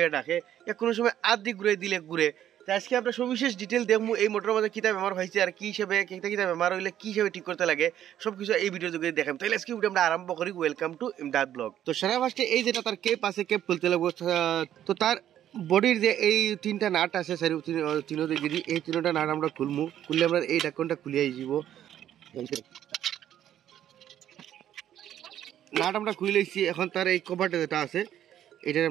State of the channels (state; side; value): quieter; left; 11.1 dB